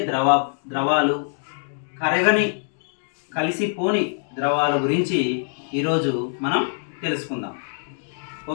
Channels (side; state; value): right; silent; digital silence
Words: ద్రవాలు, కలిసిపోని ద్రవాల గురించి ఈరోజు మనం తెలుసుకుందాం.